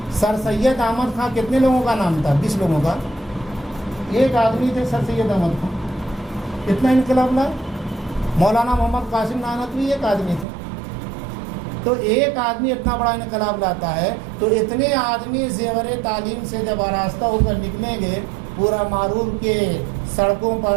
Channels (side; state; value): left; drops out; at 10.5 s